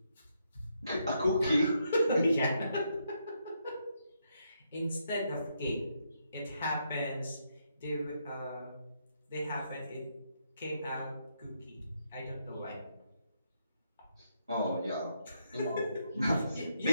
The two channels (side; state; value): both; inverted; correlation -0.78